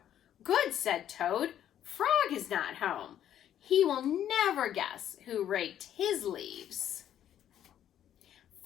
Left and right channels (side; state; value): right; quieter; 10.7 dB